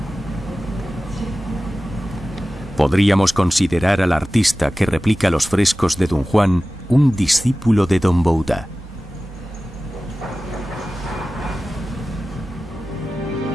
Podríamos considerar al artista que replica los frescos de Dunhuang un discípulo de Don Bouda.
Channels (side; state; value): both; normal; correlation 0.96